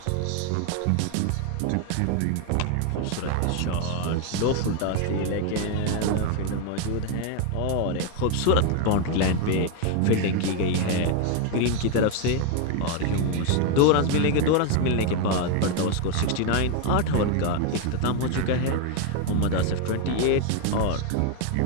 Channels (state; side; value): different; both; correlation 0.01